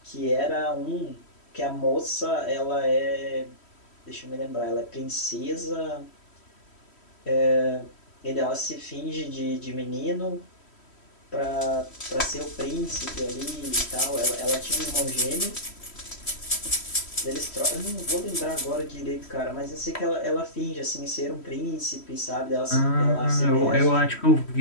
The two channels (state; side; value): late; right; 3.1 ms